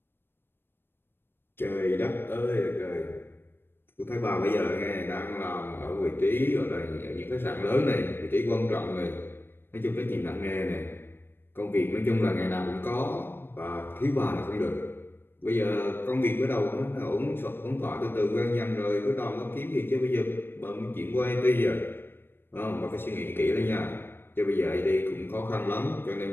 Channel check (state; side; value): late; right; 0.10 ms